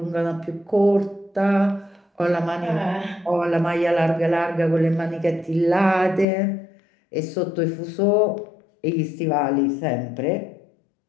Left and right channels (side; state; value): right; drops out; at 6.2 s